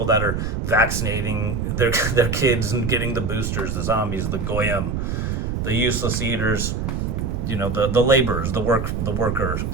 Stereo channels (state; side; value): noise; right; rumble, 1 dB below the sound